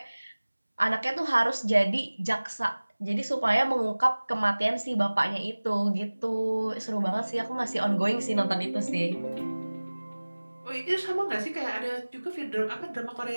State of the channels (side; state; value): both; inverted; correlation -1.00